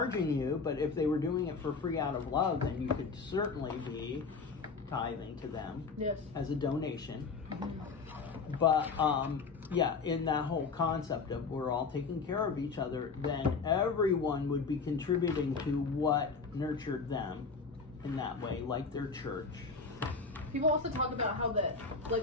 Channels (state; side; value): quieter; right; 4.7 dB